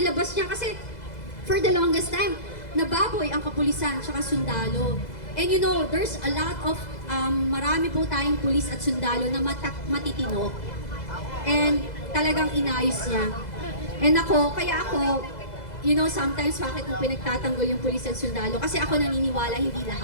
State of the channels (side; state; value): right; late; 2.0 ms